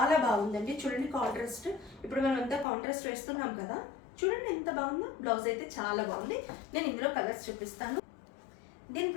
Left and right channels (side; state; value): right; drops out; at 2.7 s